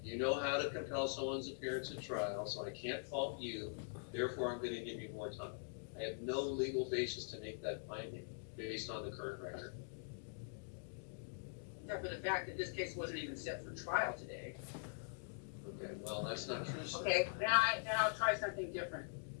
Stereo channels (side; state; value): right; silent; digital silence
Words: You know how to compel someone's appearance at trial, so I can't fault you. Therefore, I'm going to give you more time. I have no legal basis to make that finding based on the current record. Except for the fact that this case wasn't even set for trial today. Okay, well, that's not true, sir. Okay, then I'll try something different.